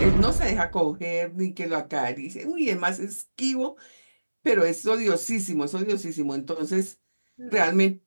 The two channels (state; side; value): inverted; both; correlation -1.00